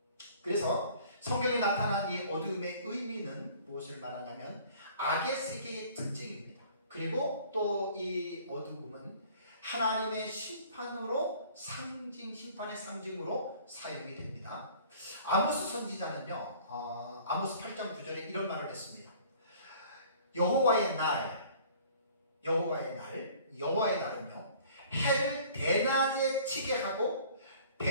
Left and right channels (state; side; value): inverted; both; correlation -0.51